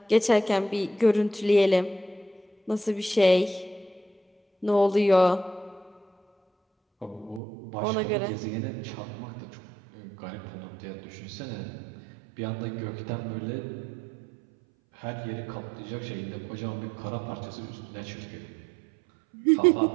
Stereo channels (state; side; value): drops out; left; at 7.4 s